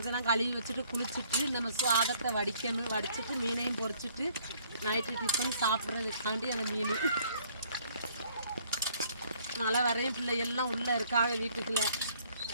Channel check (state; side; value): inverted; both; correlation -0.62